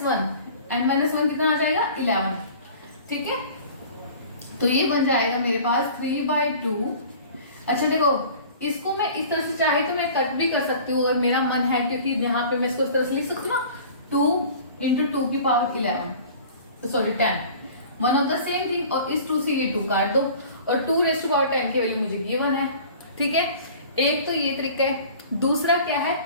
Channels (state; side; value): inverted; both; correlation -0.44